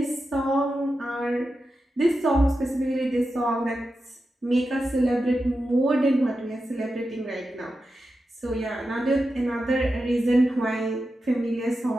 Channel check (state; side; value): normal; both; correlation 0.90